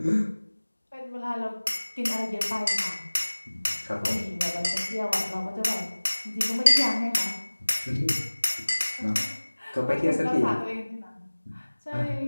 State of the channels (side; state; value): both; inverted; correlation -1.00